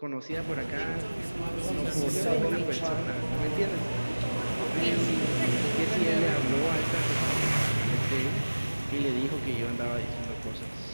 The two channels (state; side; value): inverted; both; correlation -1.00